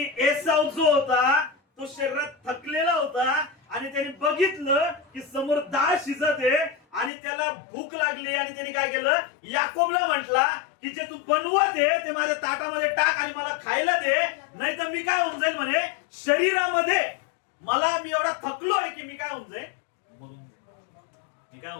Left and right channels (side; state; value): right; drops out; at 7.1 s